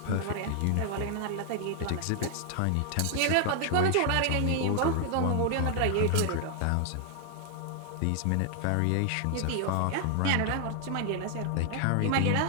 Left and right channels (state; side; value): different; both; correlation 0.00